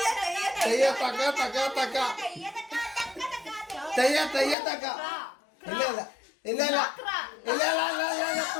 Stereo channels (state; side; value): drops out; right; at 4.5 s